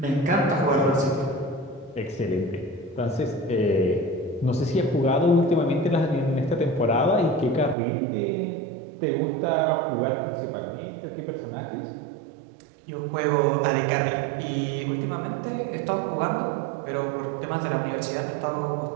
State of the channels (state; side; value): drops out; left; at 7.8 s